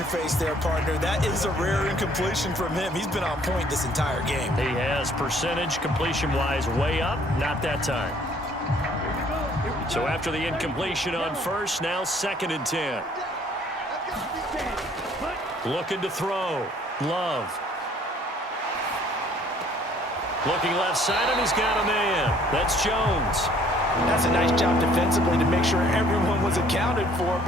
face there, partner. That is a rare incompletion from him. He's been on point this entire game. He has percentage completion-wise way up. Not that time. So after the incompletion on 1st, now 2nd and 10. Looking to throw. Love. Looking left side, and he's got a man. That's Jones. That's a nice job defensively to make sure everyone was accounted for,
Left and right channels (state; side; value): normal; both; correlation 0.59